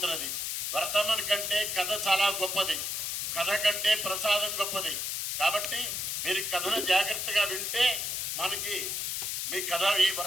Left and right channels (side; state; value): left; noise; hiss, 2 dB below the sound